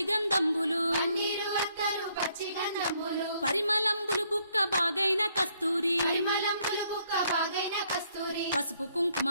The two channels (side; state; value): both; inverted; correlation -0.69